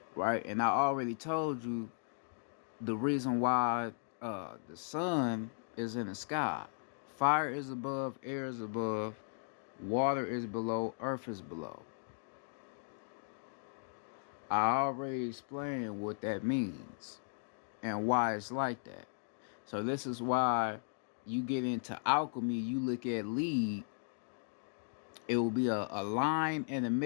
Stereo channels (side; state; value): right; silent; digital silence